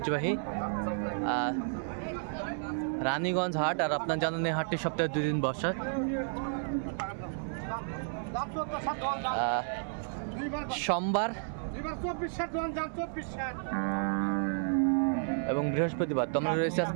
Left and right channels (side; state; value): left; silent; 56 dB below the other